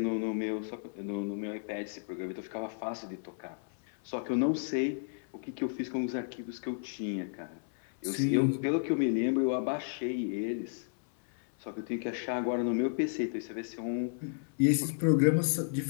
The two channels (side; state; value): right; silent; 56 dB below the other